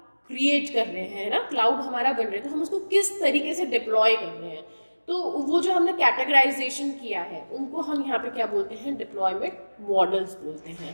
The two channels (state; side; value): inverted; both; correlation -1.00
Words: क्रिएट कर रहे हैं ना, क्लाउड हमारा बन रहा है, तो हम उसको किस तरीके से डिप्लॉय कर रहे हैं, तो वो जो हमने कैटेगराइजेशन किया है उनको हम यहाँ पे क्या बोलते हैं, डिप्लॉयमेंट मॉडल्स बोलते